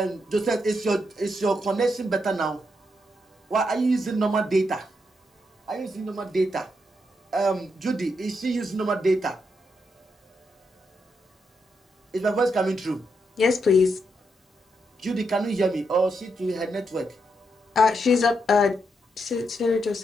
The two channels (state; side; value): normal; both; correlation 0.81